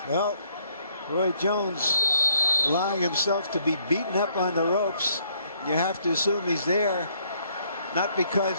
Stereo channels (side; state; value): both; inverted; correlation -0.67